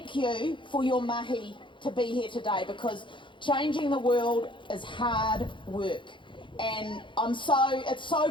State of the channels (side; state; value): right; late; 0.24 ms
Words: you for your mahi to be here today, because changing the world is hard work, and it's